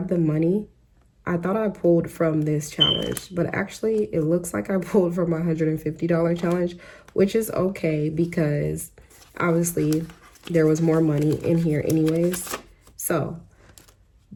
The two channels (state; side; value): identical; both; correlation 1.00